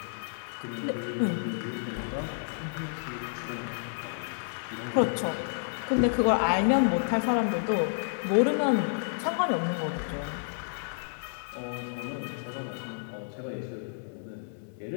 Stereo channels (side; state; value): right; silent; digital silence